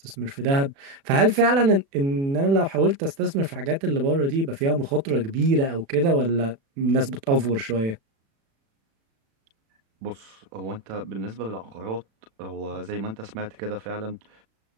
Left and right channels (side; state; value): left; late; 36 ms